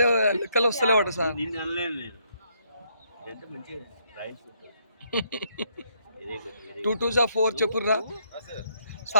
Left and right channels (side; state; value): both; inverted; correlation -0.72